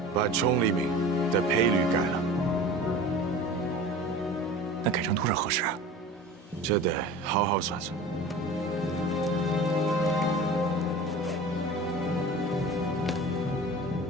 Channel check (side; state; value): both; normal; correlation 0.37